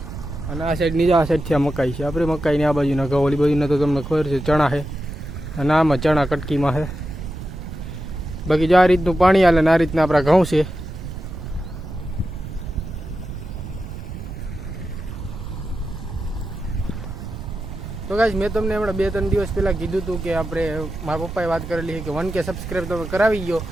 અને આ સાઈડ નીચે, આ સાઈડથી આ મકાઈ છે આપણે. મકાઈની આ બાજુના ઘઉં, ઓલી બાજુના તો તમને ખબર છે ચણા છે. અને આમાં ચણા કટકીમાં છે. બાકી જો આ રીતનું પાણી હાલે ને આ રીતના આપણા ઘઉં છે. તો ગાઈસ મેં તમને હમણાં 2-3 દિવસ પહેલાં કીધું હતું કે આપણે, મારા પપ્પાએ વાત કરેલી છે કે 1K સબસ્ક્રાઈબ તમે કરાવી ગયો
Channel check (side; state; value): right; noise; rumble, 9 dB below the sound